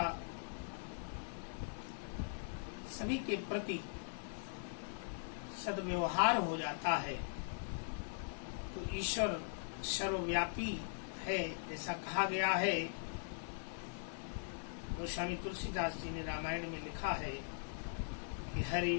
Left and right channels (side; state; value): right; silent; 50 dB below the other